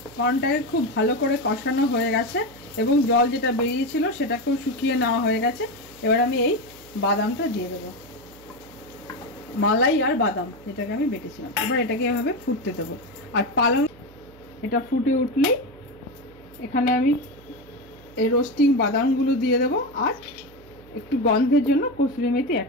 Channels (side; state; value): right; noise; hum, 23 dB below the sound